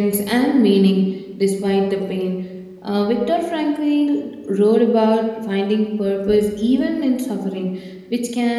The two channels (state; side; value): identical; both; correlation 1.00